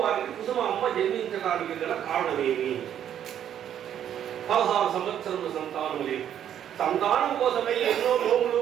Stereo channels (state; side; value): quieter; left; 10.0 dB